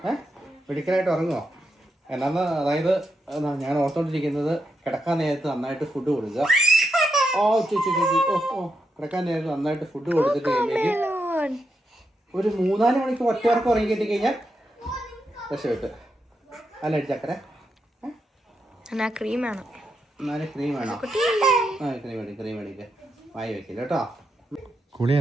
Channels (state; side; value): normal; both; correlation 0.84